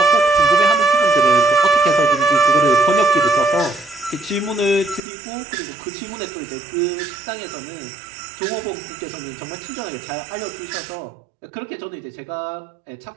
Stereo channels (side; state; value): left; drops out; at 5.0 s